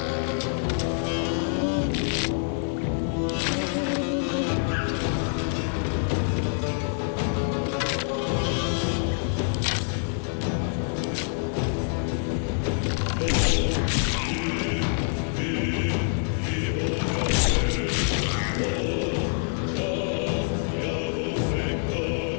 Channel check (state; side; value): silent; right; 61 dB below the other